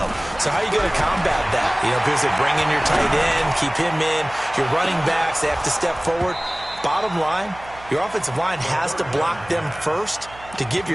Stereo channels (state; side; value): noise; right; hum, 20 dB below the sound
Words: So how are you going to combat that? You know, because they bring in your tight end, keep him in, your running backs, they have to step forward. Bottom line, your offensive line has to block them first to give